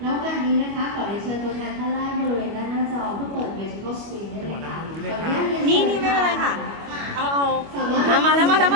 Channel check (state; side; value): late; left; 25 ms